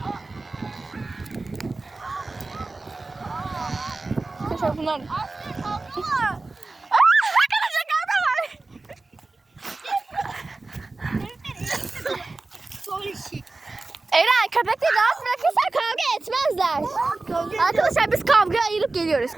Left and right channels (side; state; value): left; quieter; 3.4 dB